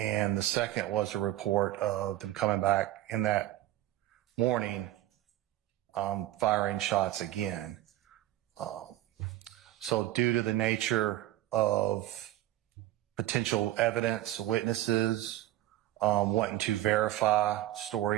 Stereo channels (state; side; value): quieter; left; 14.6 dB